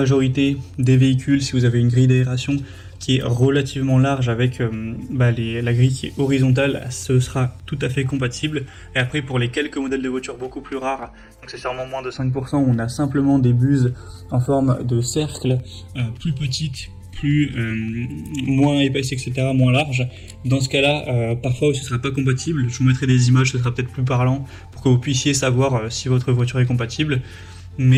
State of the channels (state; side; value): identical; both; correlation 1.00